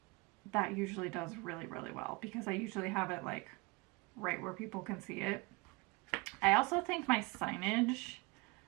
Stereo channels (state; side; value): quieter; left; 26.7 dB